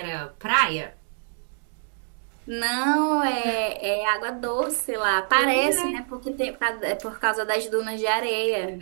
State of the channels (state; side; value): silent; left; digital silence